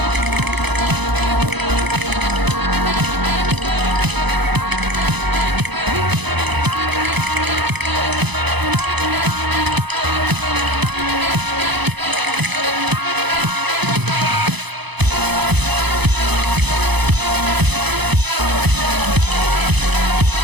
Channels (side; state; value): left; late; 0.99 ms